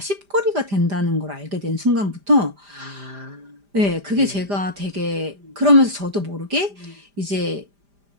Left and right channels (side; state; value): left; late; 5.0 ms